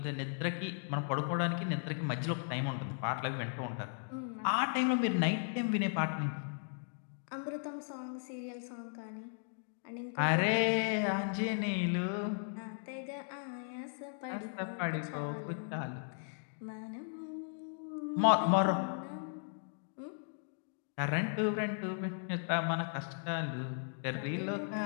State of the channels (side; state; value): right; silent; digital silence